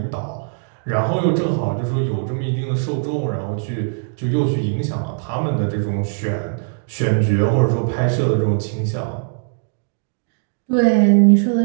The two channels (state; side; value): silent; left; 66 dB below the other